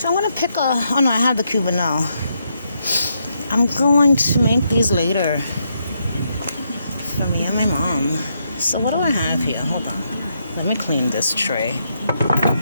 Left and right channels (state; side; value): inverted; both; correlation -0.79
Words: I'm gonna pick oh no, I have the Cubanelle. I'm going to make these later for me and my mom. So what do I have here? Hold on. Let me clean this tray.